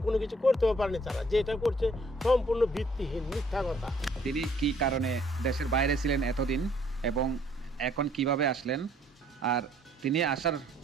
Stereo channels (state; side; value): normal; both; correlation 0.62